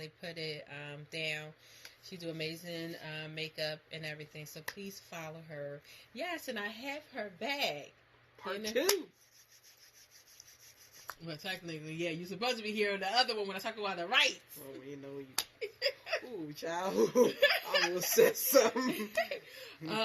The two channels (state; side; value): identical; both; correlation 1.00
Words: put it down. She do amazing makeup and everything. So please follow her. Yes, and I have her bag. Part two. Well, technically, yeah, you're supposed to be here on the other one when I talk about the rights. Oh, you know you. Ooh, child. I almost said something.